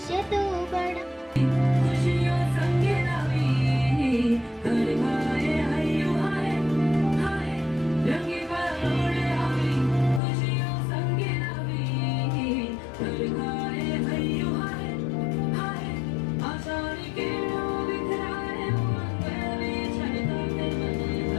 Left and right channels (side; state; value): right; drops out; at 10.2 s